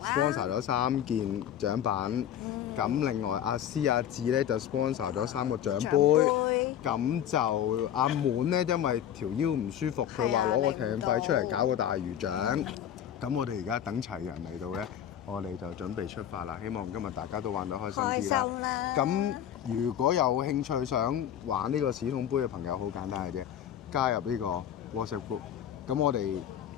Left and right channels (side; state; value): right; quieter; 10.2 dB